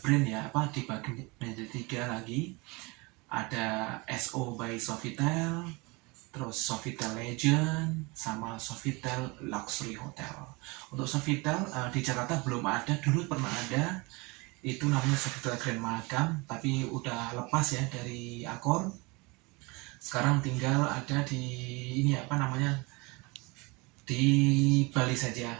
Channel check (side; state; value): left; quieter; 26.4 dB